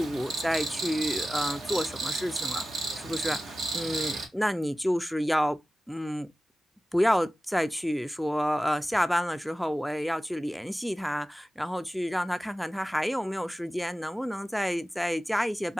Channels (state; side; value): normal; both; correlation 0.95